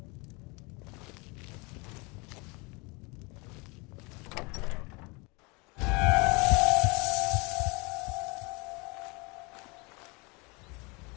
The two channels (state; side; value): quieter; right; 28.1 dB